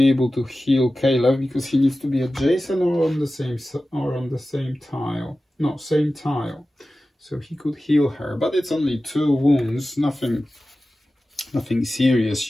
able to heal Caleb because he needs to be adjacent or on the same tile. No, same tile. So he could heal her, but it's only 2 wounds. Nothing serious.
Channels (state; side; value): normal; both; correlation 0.95